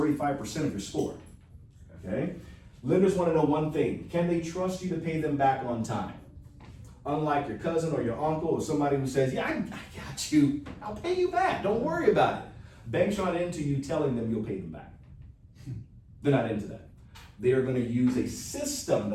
of your score, okay? Lenders want to know one thing: can they trust you to pay them back on time? Unlike your cousin or your uncle or somebody who says, yeah, I got you, I'll pay you back, don't worry about it. Banks aren't into you telling them you'll pay them back. They're not into that. They are going to use a system to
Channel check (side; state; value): both; identical; correlation 1.00